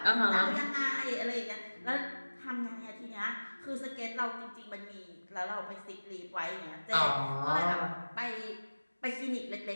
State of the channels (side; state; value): both; inverted; correlation -1.00